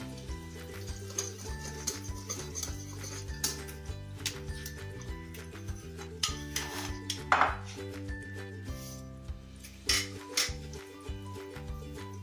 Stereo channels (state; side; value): identical; both; correlation 1.00